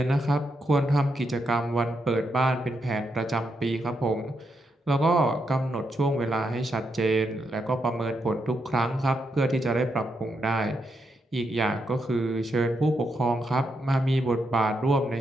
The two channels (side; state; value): both; normal; correlation 0.82